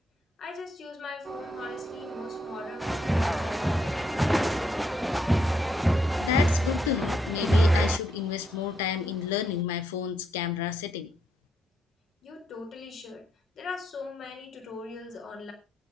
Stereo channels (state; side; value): normal; both; correlation 0.78